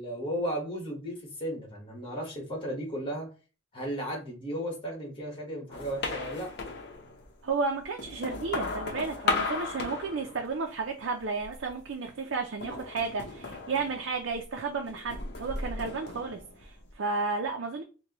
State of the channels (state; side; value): normal; both; correlation -0.03